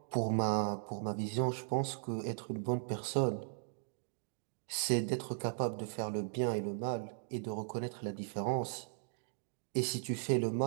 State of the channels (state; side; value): silent; left; digital silence